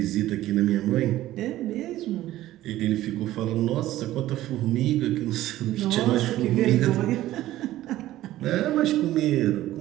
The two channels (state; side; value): quieter; left; 14.9 dB